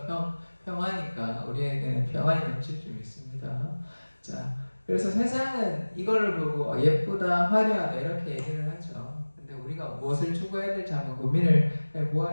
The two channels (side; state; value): both; inverted; correlation -1.00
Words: 평화니까 우리에게는 평안이 넘칠 줄 믿습니다. 자, 그래서 세상은 이거를 보고 예쁘다, 화려하다 이렇게 얘기를 하죠. 근데 우리가 무엇을 추구해야 될지 한번 고민을